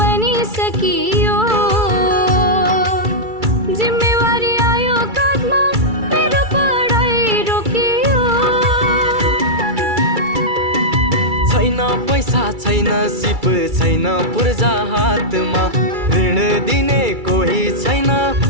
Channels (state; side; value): late; left; 2.3 ms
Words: सकियो जिम्मेवारी आयो काँधमा मेरो पढाइ रोकियो छैन पैसा छैन सिप छैन पूर्जा हातमा ऋण दिने कोही छैन